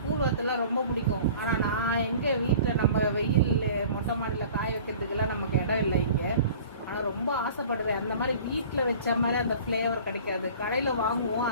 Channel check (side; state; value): both; inverted; correlation -0.45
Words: கூழ் வத்தல்லாம் ரொம்ப பிடிக்கும். ஆனால் நான் எங்கே வீட்டில் நம்ம வெயில் மொட்டை மாடியில் காய வைக்கிறதுக்கெல்லாம் நமக்கு இடம் இல்லை இங்கே. ஆனால் ரொம்ப ஆசைப்படுவேன். அந்த மாதிரி வீட்டில் வச்ச மாதிரி அந்த ஃப்ளேவர் கிடைக்காது, கடையில் வாங்குவோம்.